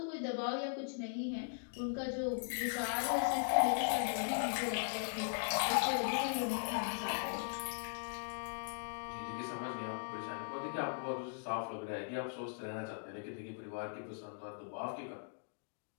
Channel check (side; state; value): right; silent; digital silence